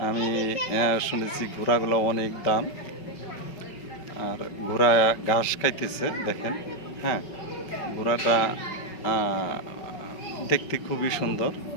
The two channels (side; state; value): right; late; 5.3 ms